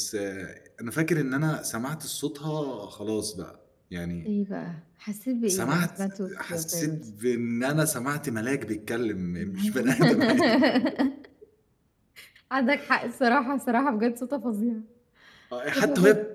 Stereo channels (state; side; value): identical; both; correlation 1.00